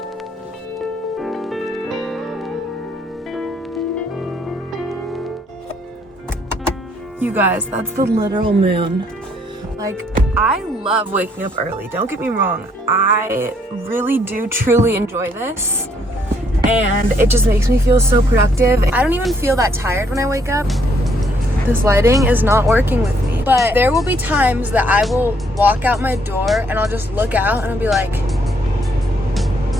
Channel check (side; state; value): both; normal; correlation 0.69